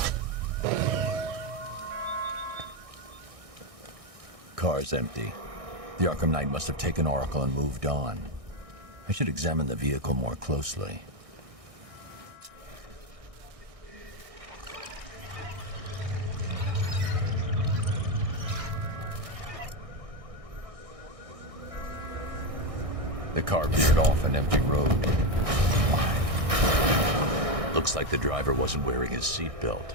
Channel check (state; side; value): late; left; 1.6 ms